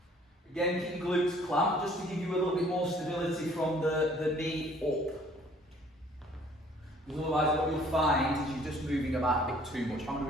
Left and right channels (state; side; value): normal; both; correlation 0.57